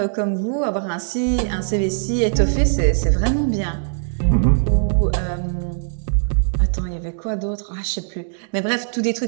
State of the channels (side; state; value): left; silent; digital silence